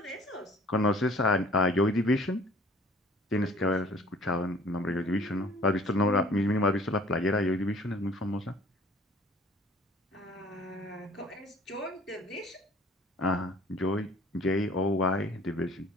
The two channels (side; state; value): both; normal; correlation 0.52